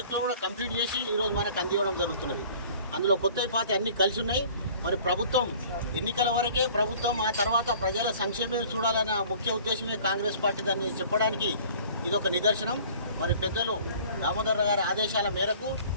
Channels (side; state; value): both; inverted; correlation -0.49